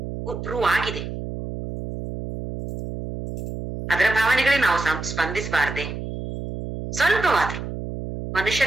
ಪ್ರೂವ್ ಆಗಿದೆ. ಅದರ ಭಾವನೆಗಳಿಗೆ ನಾವು ಸ್ಪಂದಿಸಬಾರ್ದೆ? ಸ್ವಲ್ಪವಾದ್ರು.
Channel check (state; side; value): noise; right; hum, 7 dB below the sound